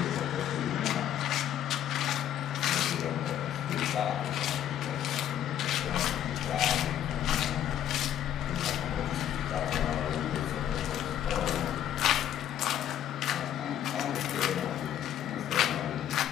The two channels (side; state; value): right; quieter; 10.7 dB